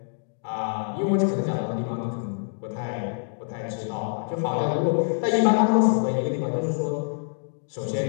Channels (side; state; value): right; silent; digital silence